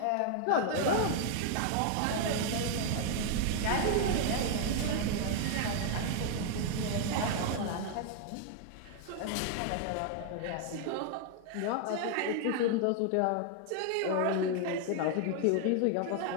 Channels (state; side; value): different; both; correlation 0.00